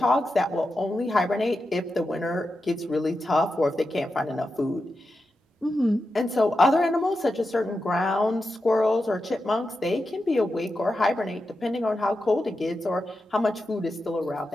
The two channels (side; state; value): both; normal; correlation 0.89